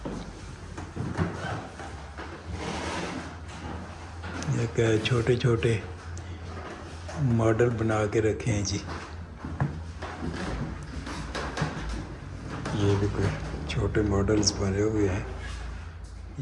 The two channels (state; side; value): identical; both; correlation 1.00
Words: ये क्या है, छोटे छोटे मॉडल बना के रखे हैं जी। ये भी कोई छोटे मॉडल्स बने हुए हैं।